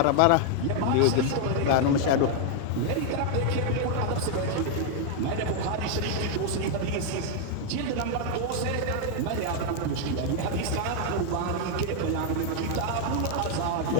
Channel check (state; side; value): different; both; correlation 0.00